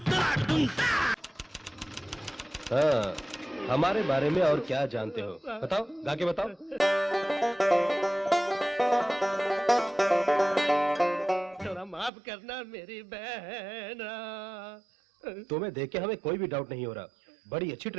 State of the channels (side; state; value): left; drops out; at 12.1 s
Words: हाँ, हमारे बारे में और क्या जानते हो? बताओ, गा के बताओ। थोड़ा माफ करना मेरी बहन। तुम्हें देख के हमें कोई भी डाउट नहीं हो रहा। बड़ी अच्छी